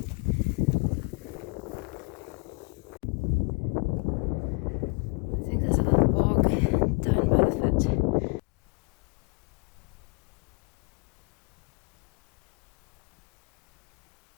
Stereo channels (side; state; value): right; quieter; 30.9 dB